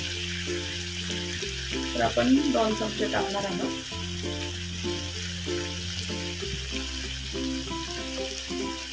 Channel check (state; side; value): identical; both; correlation 1.00